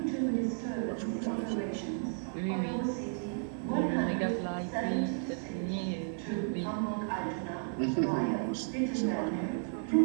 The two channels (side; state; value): left; silent; digital silence